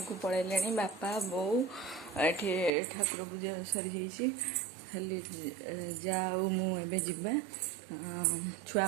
को पलैले बापा बो ये ठाकुर पूजा सरी जाइए खाली जाऊ मुझे जीवा छुआ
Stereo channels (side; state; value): left; drops out; at 2.7 s